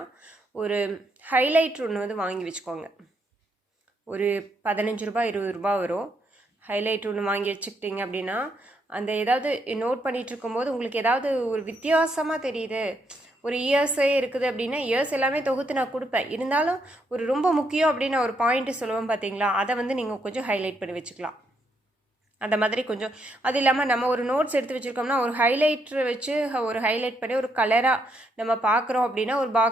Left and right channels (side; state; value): both; normal; correlation 0.76